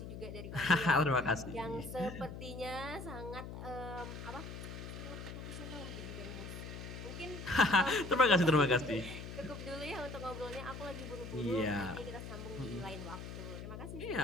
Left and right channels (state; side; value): noise; left; hum, 9 dB below the sound